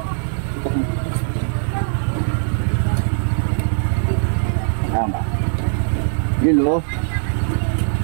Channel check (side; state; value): left; silent; 66 dB below the other